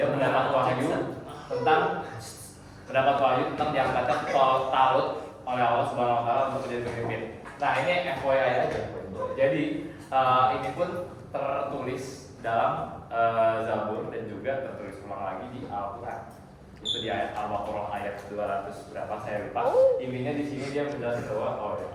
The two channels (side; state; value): both; identical; correlation 1.00